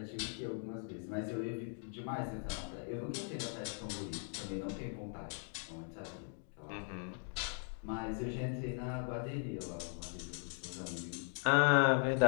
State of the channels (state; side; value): silent; right; 52 dB below the other